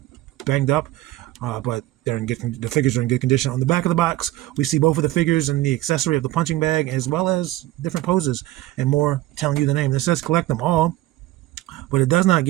banged up, but the figures are in good condition. On the back of the box, we see both of the figures and the accessory of the punching bag, as well as different poses and more telling you the name. This says collect them all, but it does not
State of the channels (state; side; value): quieter; left; 16.3 dB